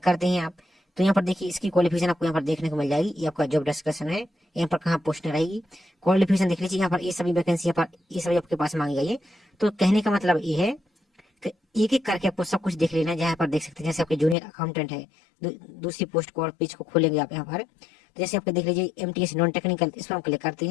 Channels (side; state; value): right; drops out; at 14.4 s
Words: करते हैं आप, तो यहाँ पर देखिए इसकी क्वालिफिकेशन आपको यहाँ पर देखने को मिल जाएगी। ये आपका जॉब डिस्क्रिप्शन है, यहाँ पर कहाँ पोस्ट रहेगी, क्वालिफिकेशन देख लीजिए। यहाँ पर ये सभी वैकेंसी यहाँ पर ये सभी आपके पास मांगी गई है। तो कहने का मतलब ये है कि एक एक करके आपको सब कुछ देख लेना है। जहाँ पर देख सकते हैं जैसे आपके जूनियर अकाउंटेंट है, दूसरी पोस्ट को और पेज को खोलेंगे आप यहाँ पर, तो जैसे आपको देख लीजिए MTS नॉन टेक्निकल, इस पर हम क्लिक करते